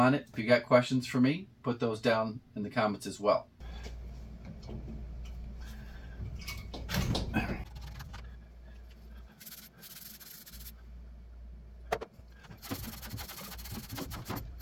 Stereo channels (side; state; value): both; identical; correlation 1.00